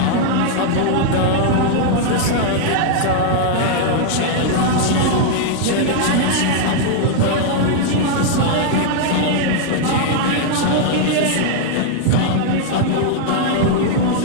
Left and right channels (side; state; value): both; different; correlation -0.01